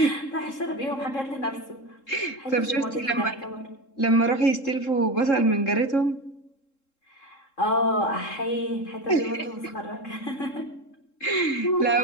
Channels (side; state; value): right; late; 3.7 ms